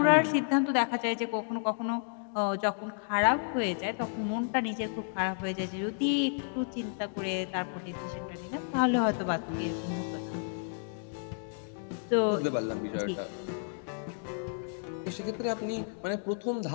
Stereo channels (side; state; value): right; silent; digital silence